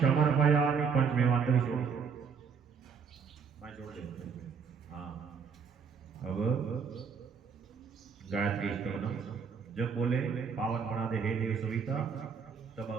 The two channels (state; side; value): quieter; left; 6.3 dB